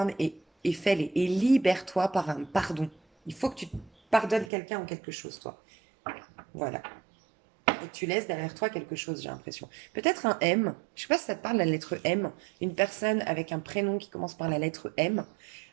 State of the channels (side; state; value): left; drops out; at 4.5 s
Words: et fais-les. Et libère-toi par un pardon. Il faut que tu pardonnes quelqu'un ou quelque chose, toi. Voilà. Et que tu laisses derrière toi quelque chose, j'ai l'impression. Peut-être un M. Je sais pas si ça te parle, la lettre M. Une personne avec un prénom qui commence par la lettre M.